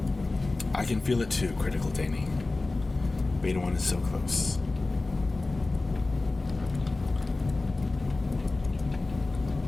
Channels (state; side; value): quieter; right; 3.3 dB